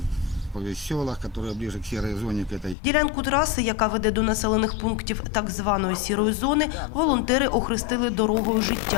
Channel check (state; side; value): drops out; right; at 2.8 s